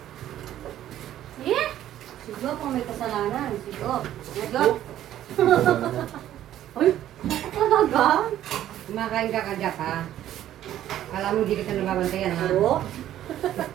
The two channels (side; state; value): left; quieter; 12.2 dB